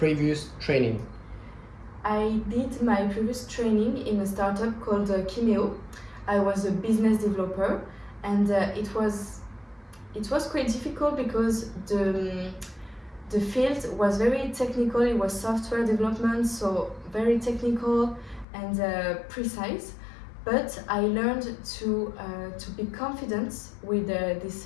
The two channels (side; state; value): right; drops out; at 18.4 s